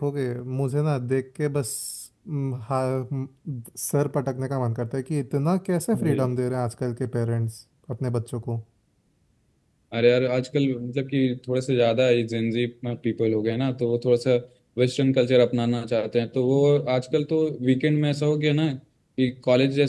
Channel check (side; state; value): both; identical; correlation 1.00